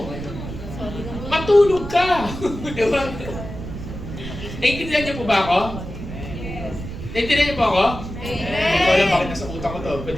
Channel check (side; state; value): right; noise; rumble, 9 dB below the sound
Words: Matulog ka. Diba? Naintindihan niyo po ba ako? Naintindihan niyo po ako? Hindi ko alam bakit nasa utak ko to.